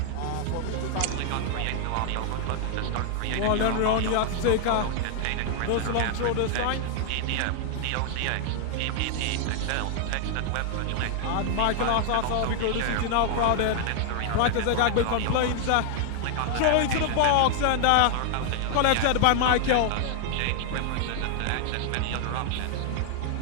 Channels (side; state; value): both; different; correlation 0.00